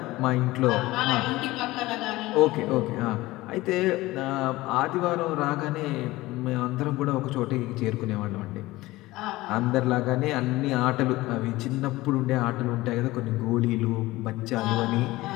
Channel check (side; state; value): right; quieter; 18.8 dB